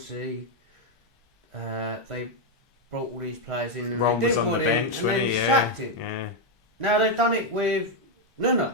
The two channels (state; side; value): normal; both; correlation 0.02